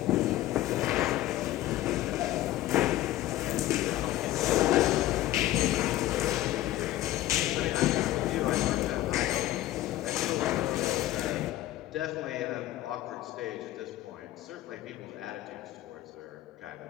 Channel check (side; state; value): right; quieter; 14.9 dB